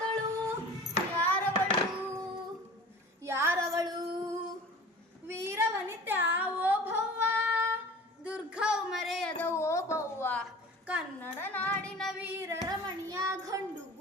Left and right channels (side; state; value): both; normal; correlation 0.41